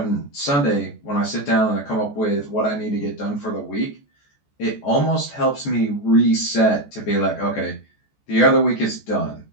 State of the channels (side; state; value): right; late; 14 ms